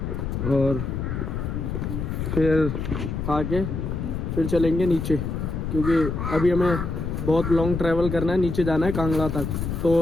और फिर आके फिर चलेंगे नीचे, क्योंकि अभी हमें बहुत लॉन्ग ट्रैवल करना है, नीचे जाना है कांगड़ा तक।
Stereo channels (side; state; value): left; noise; rumble, 3 dB below the sound